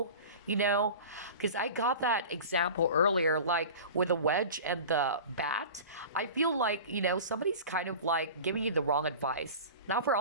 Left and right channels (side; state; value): both; inverted; correlation -0.35